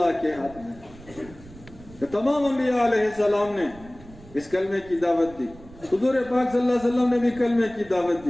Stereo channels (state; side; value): noise; right; rumble, 20 dB below the sound